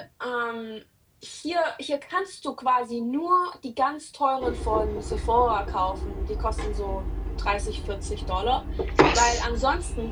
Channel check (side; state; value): both; identical; correlation 1.00